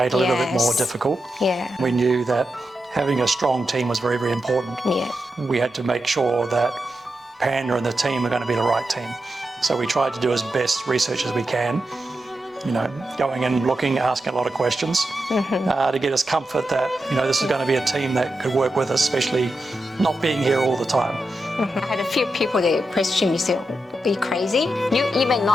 it a little bit more difficult. Yeah. We knew that having a strong team was very, very important. Yeah. We had to make sure that Panda and the team are going to be the right team. So we tried to do as best research as we can, you know, going in, looking, asking a lot of questions to get us comfort that, you know, this is going to be a team that could work with us, especially not being here all the time. I had a few people that questioned me, say, are you crazy? You even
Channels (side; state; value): both; normal; correlation 0.88